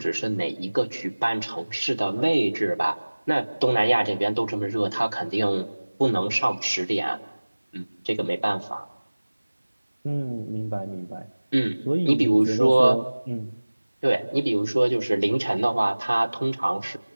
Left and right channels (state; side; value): inverted; both; correlation -1.00